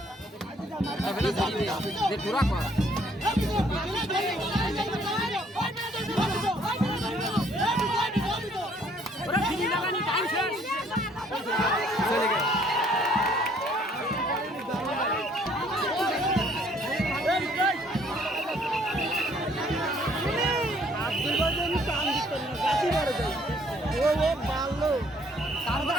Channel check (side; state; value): both; normal; correlation 0.62